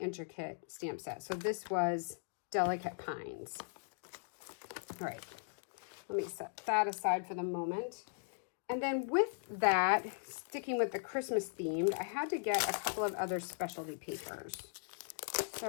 stamp set. So this was Delicate Pines. All right, let me set that aside for the moment. And then with that, sticking with the Christmas themed, I had to get a couple of other specialty papers.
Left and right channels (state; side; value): silent; right; digital silence